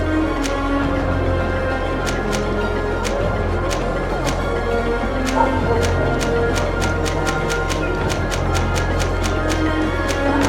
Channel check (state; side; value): identical; both; correlation 1.00